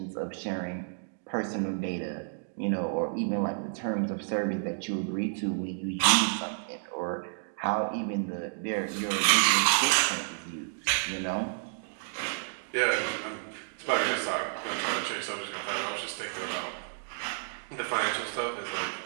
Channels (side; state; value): left; silent; digital silence